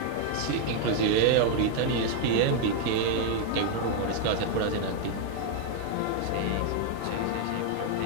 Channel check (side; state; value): both; different; correlation 0.00